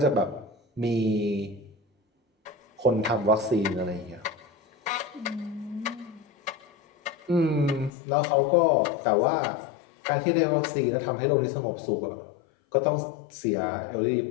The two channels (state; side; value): drops out; right; at 7.9 s